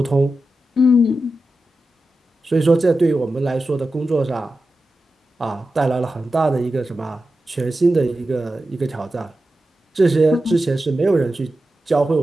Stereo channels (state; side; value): normal; both; correlation 0.91